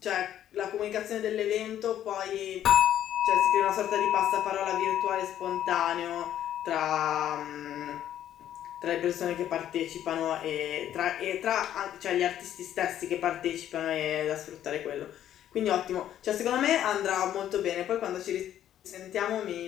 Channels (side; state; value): right; quieter; 11.2 dB